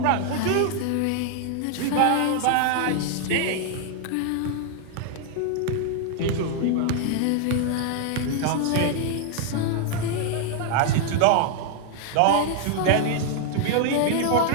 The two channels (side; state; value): both; different; correlation 0.00